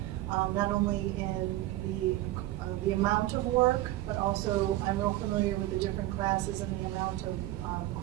not only in the amount of work, but also I'm real familiar with the different classes and the amount of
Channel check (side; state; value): left; quieter; 16.1 dB